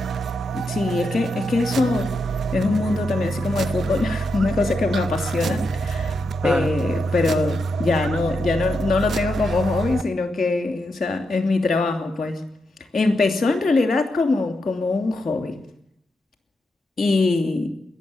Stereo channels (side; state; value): both; normal; correlation 0.84